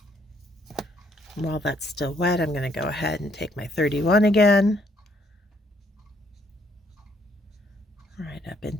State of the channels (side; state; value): both; normal; correlation 0.69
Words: While that's still wet, I'm going to go ahead and take my 31 again. Right up